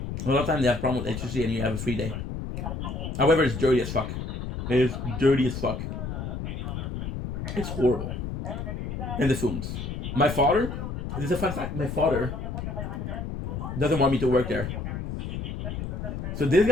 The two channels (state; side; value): noise; left; rumble, 5 dB below the sound